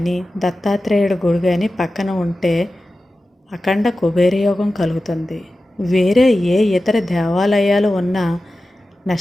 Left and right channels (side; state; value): both; normal; correlation 0.94